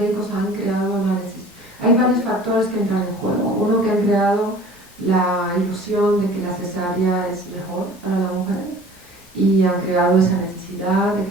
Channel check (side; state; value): both; normal; correlation 0.46